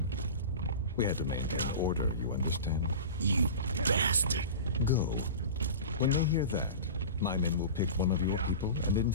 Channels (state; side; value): inverted; both; correlation -0.32